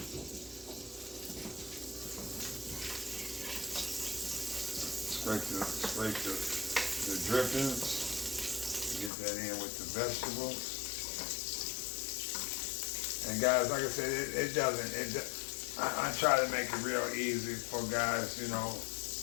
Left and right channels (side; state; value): right; drops out; at 9.1 s